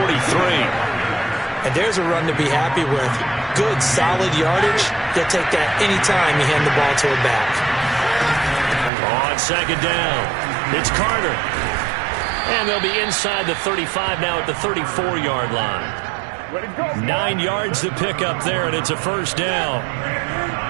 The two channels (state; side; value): drops out; left; at 8.9 s